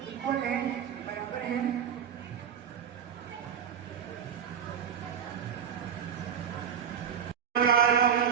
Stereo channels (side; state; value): left; quieter; 8.2 dB